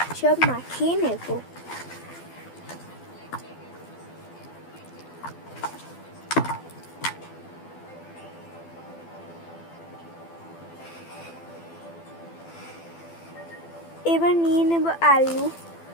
সব মাখিয়ে নেব। এবার নিয়ে নেব আলু।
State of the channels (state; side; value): late; right; 12 ms